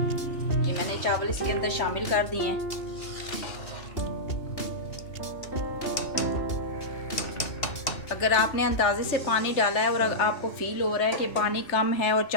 ये मैंने चावल इसके अंदर शामिल कर दिए हैं। अगर आपने अंदाजे से पानी डाला है और आपको फील हो रहा है कि पानी कम है और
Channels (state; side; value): late; right; 2.8 ms